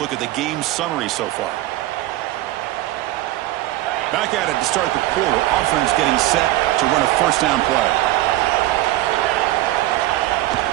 at the game summary so far. Back at it to start the quarter. Offense getting set to run a 1st down play.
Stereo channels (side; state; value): left; quieter; 16.3 dB